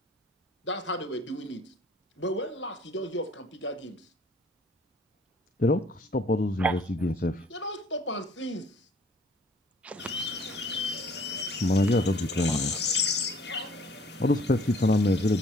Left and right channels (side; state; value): both; normal; correlation 0.57